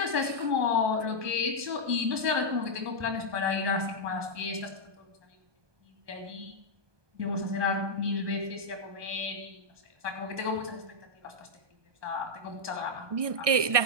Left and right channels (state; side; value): late; left; 1.2 ms